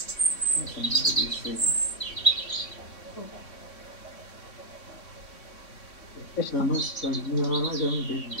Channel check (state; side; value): late; right; 3.6 ms